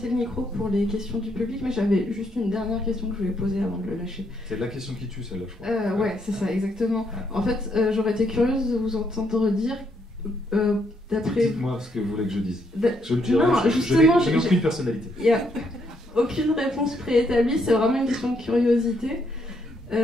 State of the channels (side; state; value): both; normal; correlation 0.74